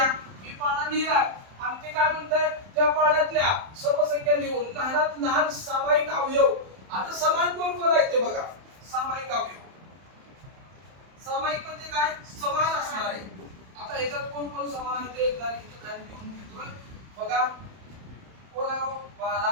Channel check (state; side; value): late; left; 31 ms